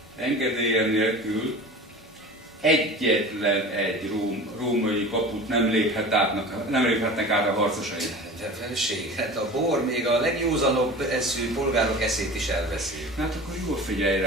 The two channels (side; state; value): both; normal; correlation 0.37